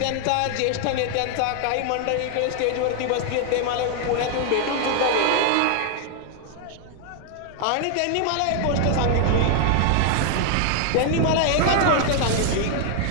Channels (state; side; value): different; both; correlation 0.00